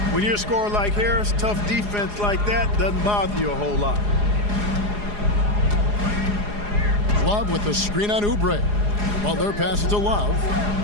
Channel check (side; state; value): left; late; 4.8 ms